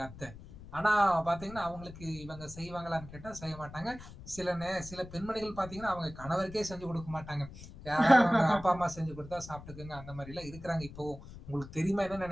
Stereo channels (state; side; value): noise; left; rumble, 15 dB below the sound